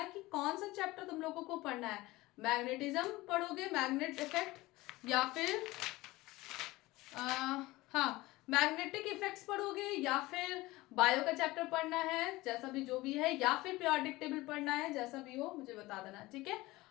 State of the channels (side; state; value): right; quieter; 19.7 dB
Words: कि कौन सा चैप्टर तुम लोगों को पढ़ना है। मैग्नेटिज्म पढ़ोगे, मैग्नेट इफेक्ट, या फिर हाँ मैग्नेटिक इफेक्ट्स पढ़ोगे, या फिर बायो का चैप्टर पढ़ना है, जैसा भी जो भी है, या फिर पीरियोडिक टेबल पढ़ना है, जैसा भी हो मुझे बता देना, ठीक है?